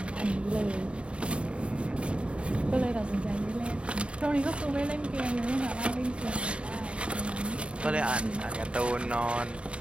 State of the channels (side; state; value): left; late; 0.058 ms